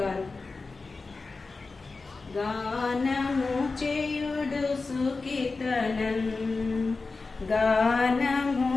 గానము చేయుడు సుకీర్తనం, గానము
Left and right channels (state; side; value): quieter; right; 3.9 dB